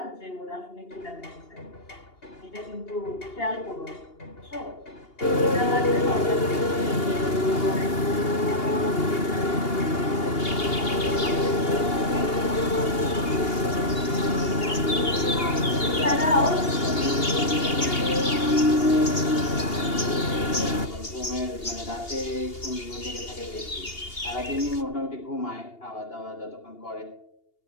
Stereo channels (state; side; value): late; right; 2.8 ms